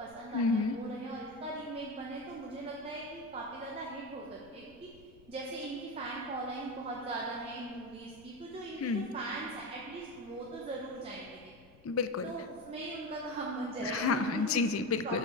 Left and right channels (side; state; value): left; noise; rumble, 24 dB below the sound